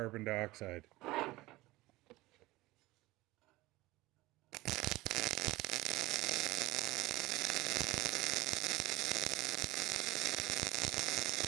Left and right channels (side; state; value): left; quieter; 19.3 dB